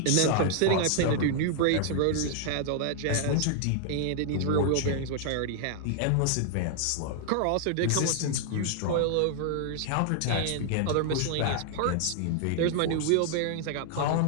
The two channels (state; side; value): different; both; correlation -0.01